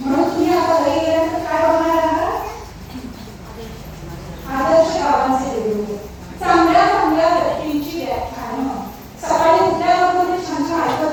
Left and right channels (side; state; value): both; identical; correlation 1.00